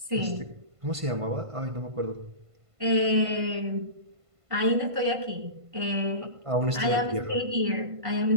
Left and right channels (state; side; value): late; left; 1.5 ms